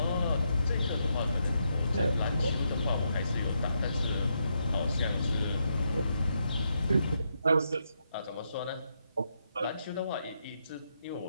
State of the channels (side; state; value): both; inverted; correlation -0.80